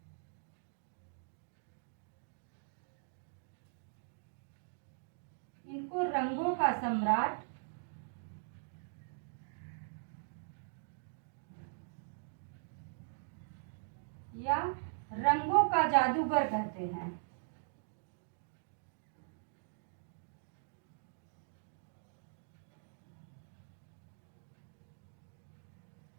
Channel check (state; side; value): silent; left; digital silence